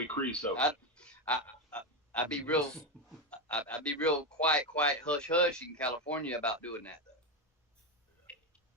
creosote. I'd be real quiet, hush hush in California about doing that though.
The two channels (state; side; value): normal; both; correlation 0.11